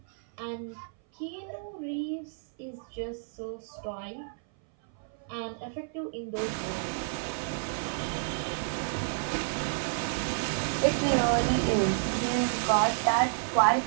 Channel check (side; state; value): left; silent; 57 dB below the other